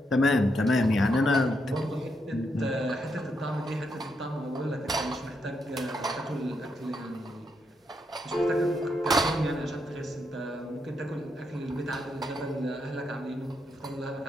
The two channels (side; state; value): both; normal; correlation 0.79